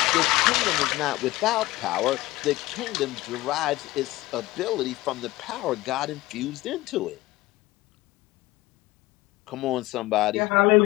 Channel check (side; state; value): right; quieter; 18.6 dB